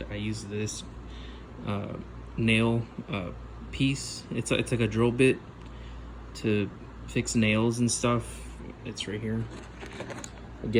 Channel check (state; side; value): identical; both; correlation 1.00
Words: I use this nail piece. It's like a drill bit to fix nails and stuff. It's right here.